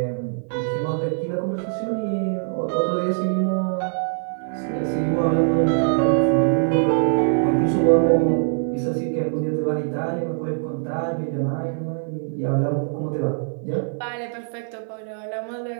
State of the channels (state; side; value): silent; left; 56 dB below the other